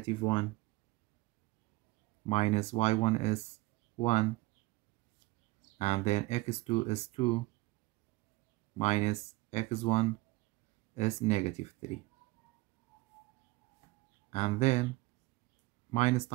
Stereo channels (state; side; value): quieter; left; 20.9 dB